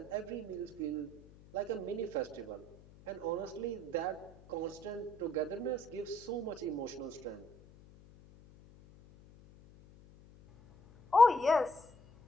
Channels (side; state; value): left; noise; hum, 22 dB below the sound